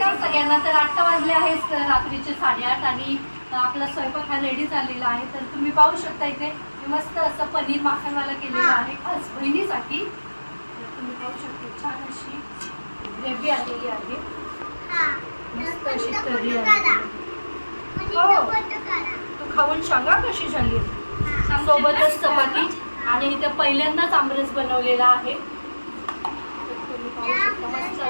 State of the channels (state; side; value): inverted; both; correlation -1.00